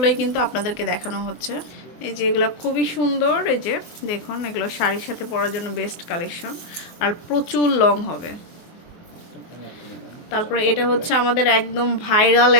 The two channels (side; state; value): right; late; 24 ms